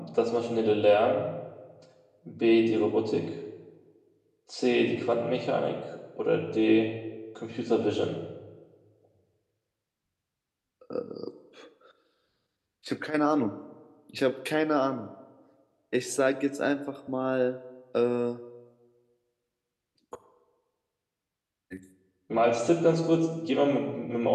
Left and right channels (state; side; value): identical; both; correlation 1.00